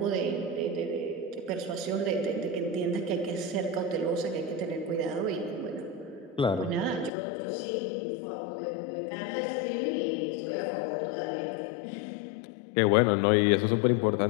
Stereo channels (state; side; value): drops out; right; at 7.1 s